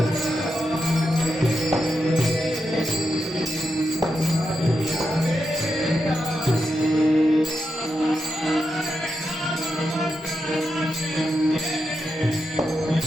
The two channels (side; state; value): both; normal; correlation 0.86